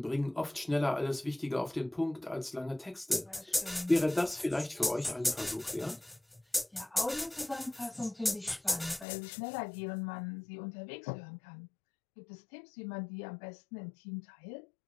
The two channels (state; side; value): drops out; right; at 9.1 s